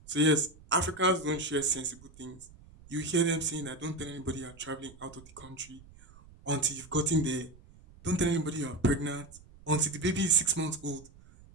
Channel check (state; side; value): noise; right; rumble, 23 dB below the sound